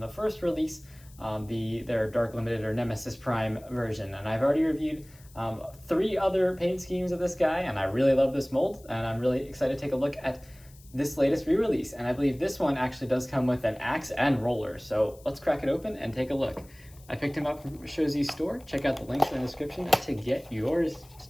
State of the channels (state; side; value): noise; left; hiss, 25 dB below the sound